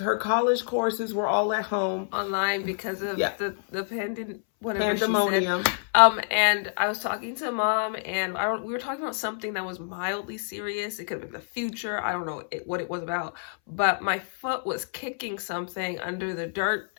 her college courses were all at home. Online because of the pandemic. Pandemonium. And I was talking to Mom, and we were talking about something that was mildly serious. It could have been the future. I don't know what it was about. But my foot was kicking something under the dirt,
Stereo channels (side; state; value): right; silent; 60 dB below the other